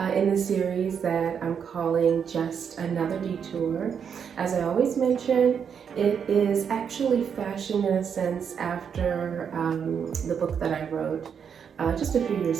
the series that I'm calling Just Another Detour. As I always mention, it is actually fashioned in a sense after the book that I wrote just a few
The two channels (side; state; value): left; quieter; 7.3 dB